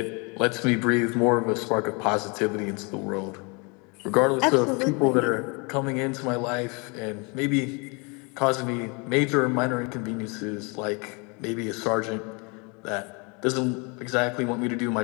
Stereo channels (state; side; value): quieter; right; 31.1 dB